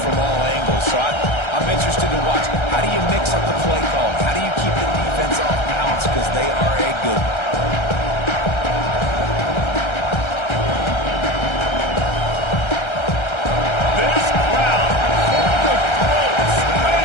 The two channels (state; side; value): late; right; 1.3 ms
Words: from all angles. So I'm interested to watch. How do you mix up the play call? How do you keep the defense off balance? Because they are a good one.